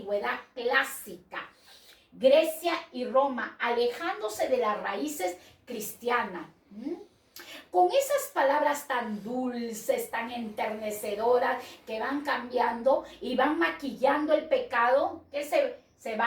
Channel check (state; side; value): identical; both; correlation 1.00